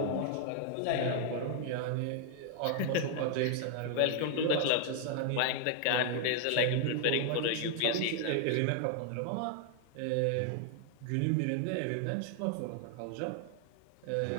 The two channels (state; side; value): different; both; correlation 0.00